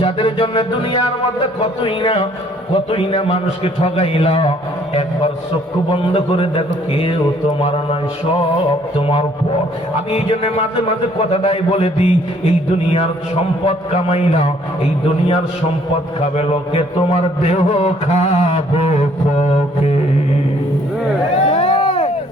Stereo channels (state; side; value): normal; both; correlation 0.62